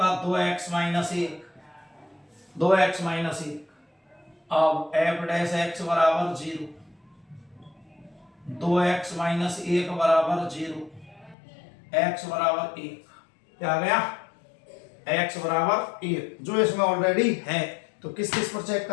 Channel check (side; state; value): right; drops out; at 11.4 s